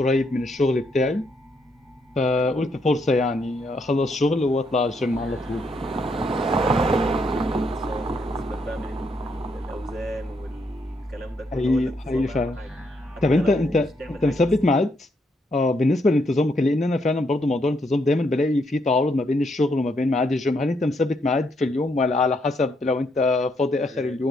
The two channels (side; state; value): both; normal; correlation 0.76